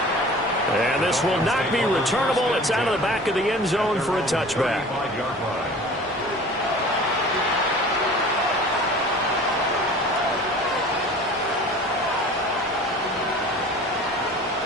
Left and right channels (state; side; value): normal; both; correlation 0.43